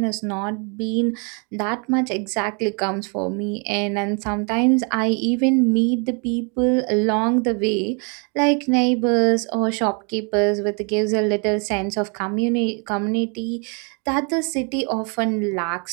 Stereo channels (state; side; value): quieter; left; 36.1 dB